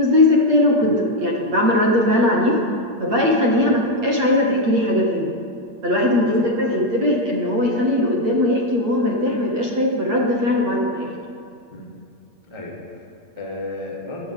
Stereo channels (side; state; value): left; late; 8.6 ms